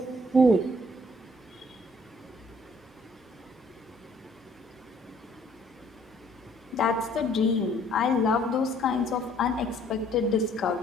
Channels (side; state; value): both; normal; correlation 0.61